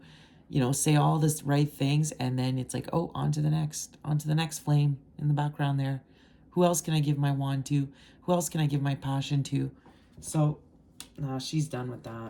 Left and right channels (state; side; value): identical; both; correlation 1.00